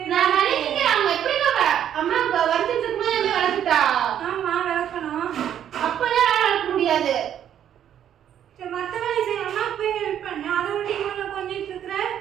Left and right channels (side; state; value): left; quieter; 10.0 dB